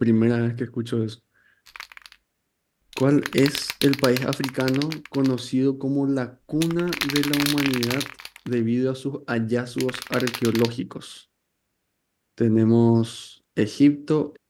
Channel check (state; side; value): identical; both; correlation 1.00